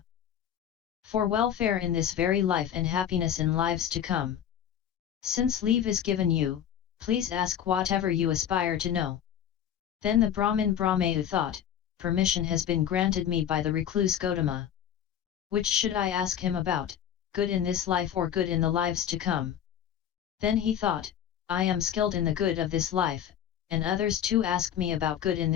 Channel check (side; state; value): right; quieter; 9.6 dB